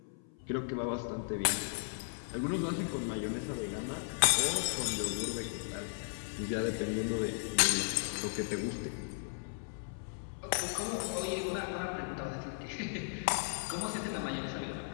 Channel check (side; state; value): right; silent; 54 dB below the other